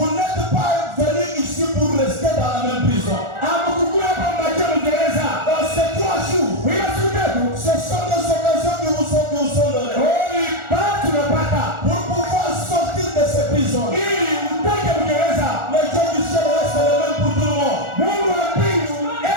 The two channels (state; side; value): late; left; 1.4 ms